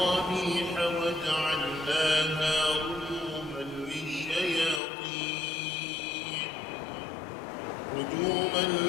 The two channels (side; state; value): right; drops out; at 4.8 s